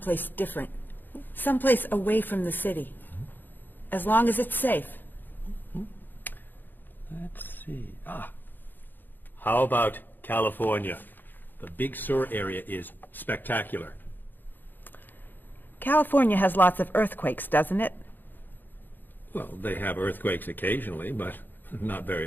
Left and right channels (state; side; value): late; right; 0.091 ms